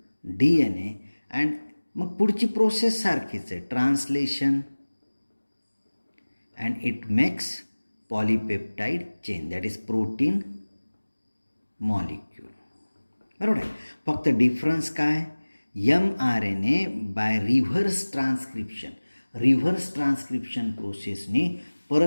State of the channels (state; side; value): inverted; both; correlation -1.00